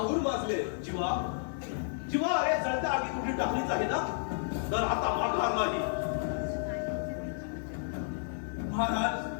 माजले. जीवा, जीवा, अरे जळत्या आगी कुठे टाकलीच आहे ना, तर आता माघार नाही. महाराज,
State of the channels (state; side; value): silent; right; 57 dB below the other